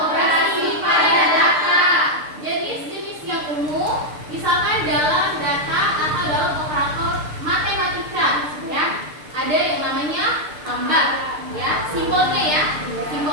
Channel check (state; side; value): late; left; 6.7 ms